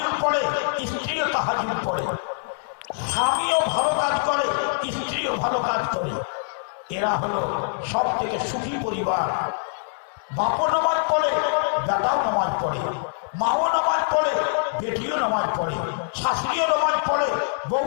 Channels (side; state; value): right; silent; digital silence